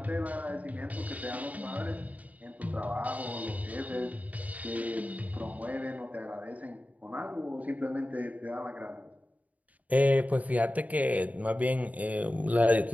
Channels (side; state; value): left; late; 0.072 ms